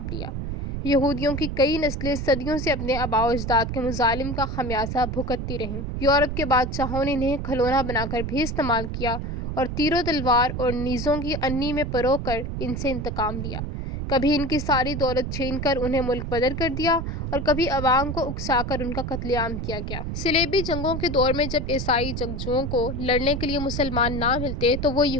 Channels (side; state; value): right; noise; rumble, 4 dB below the sound